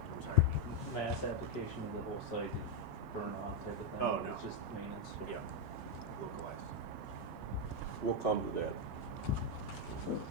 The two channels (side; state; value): both; normal; correlation 0.02